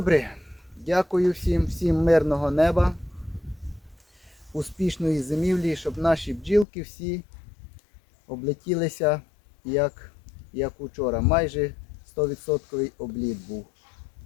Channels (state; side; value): drops out; right; at 6.7 s